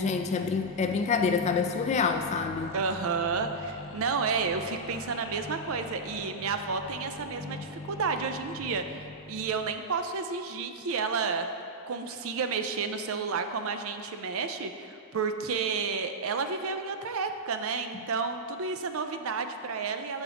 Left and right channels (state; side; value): normal; both; correlation -0.07